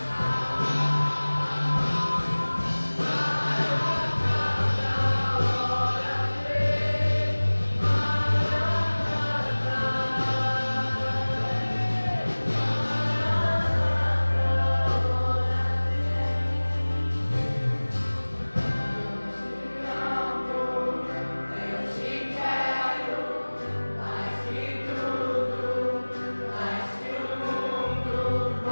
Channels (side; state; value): both; inverted; correlation -1.00